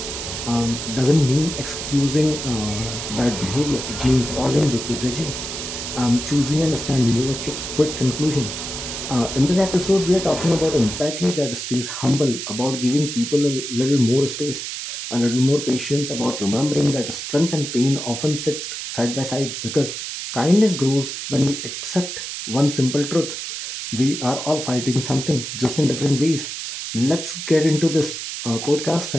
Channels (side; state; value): right; noise; hiss, 6 dB below the sound